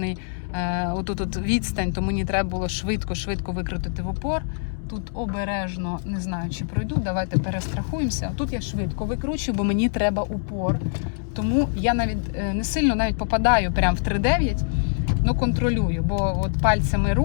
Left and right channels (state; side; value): silent; right; 62 dB below the other